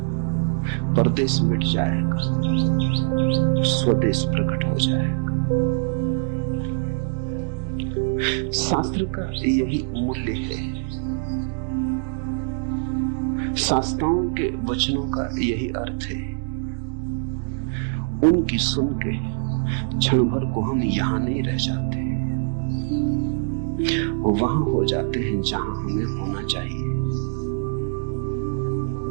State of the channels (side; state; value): left; silent; digital silence